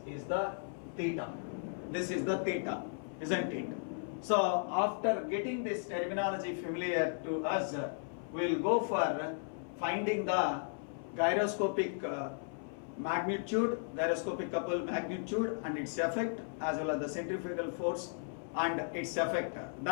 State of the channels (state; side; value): silent; right; 54 dB below the other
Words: is the theta. This is the theta, isn't it? So after getting this terminology familiar to us, we will go for finding the gyroscopic magnitude, gyroscopic couple magnitude and its effect, as well as the centrifugal force and its effect.